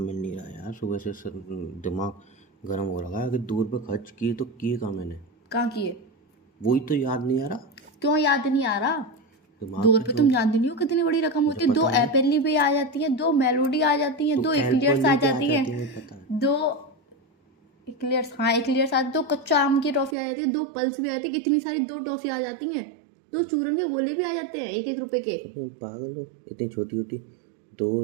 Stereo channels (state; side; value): drops out; left; at 20.2 s